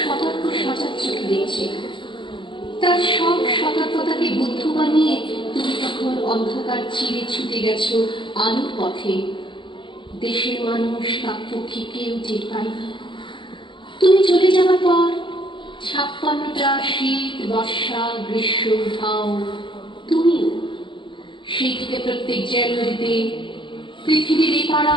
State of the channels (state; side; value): late; right; 0.24 ms